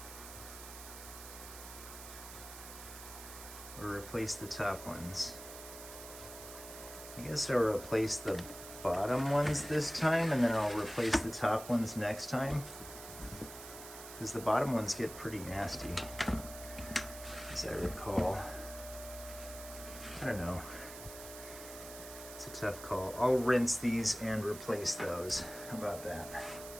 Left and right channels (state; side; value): noise; right; hiss, 13 dB below the sound